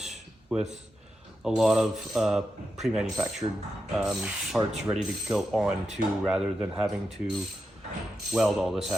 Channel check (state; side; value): normal; both; correlation 0.88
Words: with a lot of pre-manufactured parts ready to go on to, rather than having to weld all this